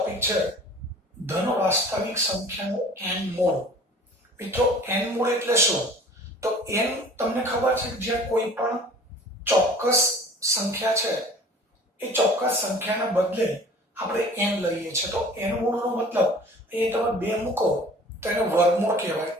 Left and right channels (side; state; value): both; normal; correlation 0.46